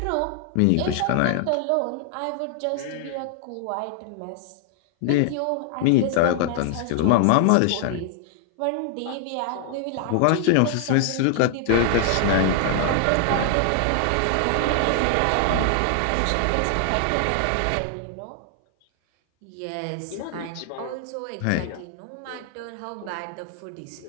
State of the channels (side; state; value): both; different; correlation -0.01